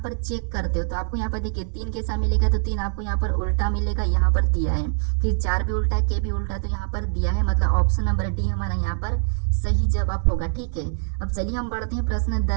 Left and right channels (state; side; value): silent; left; 63 dB below the other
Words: चेक करते हो तो आपको यहाँ पर देखिए 3 कैसा मिलेगा, तो 3 आपको यहाँ पर उल्टा मिलेगा, यहाँ पर दिया है। फिर 4 भी उल्टा, के भी उल्टा, तो यहाँ पर दिया है, मतलब ऑप्शन नंबर डी हमारा यहाँ पर सही जवाब होगा। ठीक है, अब चलिए हम बढ़ते हैं प्रश्न